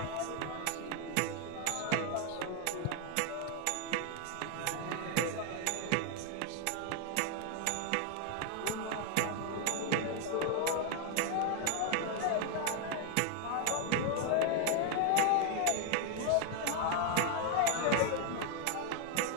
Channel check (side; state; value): both; different; correlation 0.00